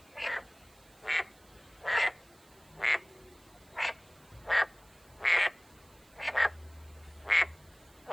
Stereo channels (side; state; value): right; noise; hiss, 28 dB below the sound